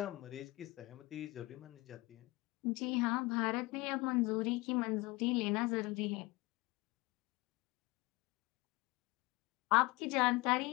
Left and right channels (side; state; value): right; quieter; 22.2 dB